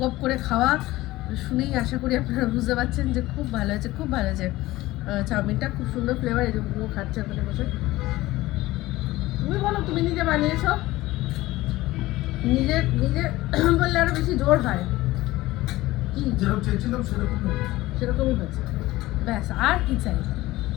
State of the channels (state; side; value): quieter; right; 17.8 dB